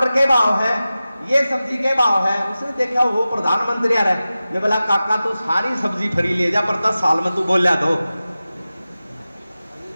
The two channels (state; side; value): inverted; both; correlation -0.95